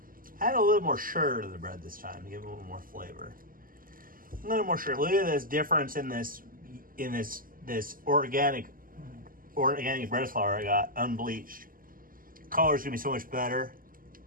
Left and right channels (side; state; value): left; late; 0.41 ms